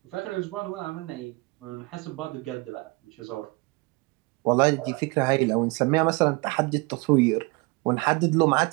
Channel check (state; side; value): quieter; left; 26.2 dB